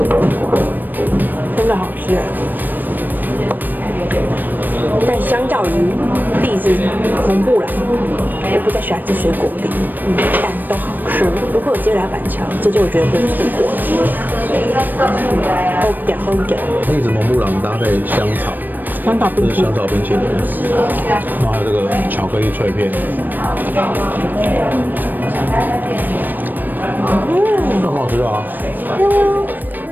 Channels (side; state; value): left; late; 0.090 ms